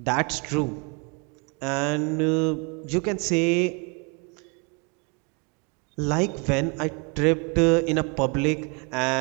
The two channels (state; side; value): quieter; left; 32.3 dB